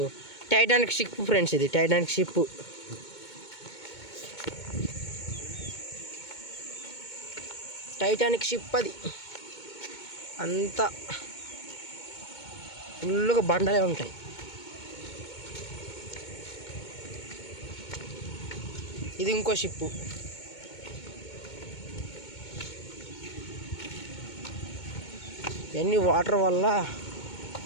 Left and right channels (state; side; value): late; right; 2.2 ms